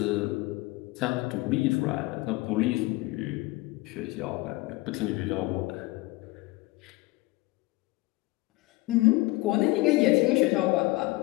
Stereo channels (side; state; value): right; quieter; 21.1 dB